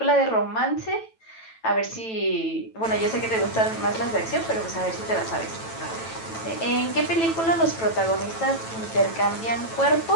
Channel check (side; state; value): right; late; 9.0 ms